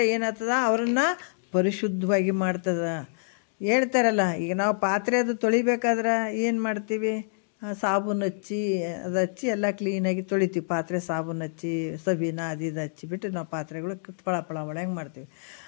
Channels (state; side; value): silent; right; digital silence